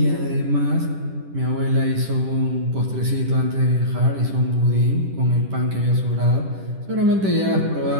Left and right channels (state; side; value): late; left; 10 ms